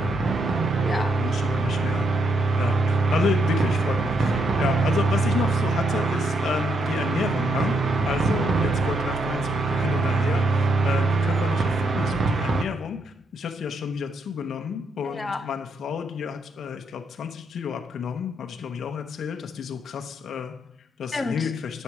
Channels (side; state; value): both; normal; correlation 0.76